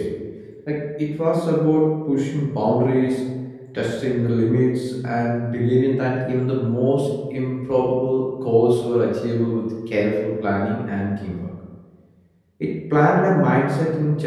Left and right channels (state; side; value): identical; both; correlation 1.00